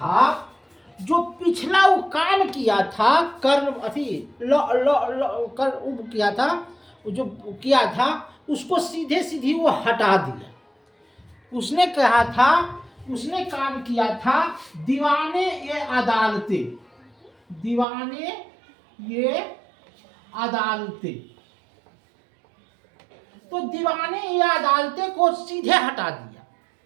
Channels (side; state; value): left; drops out; at 17.9 s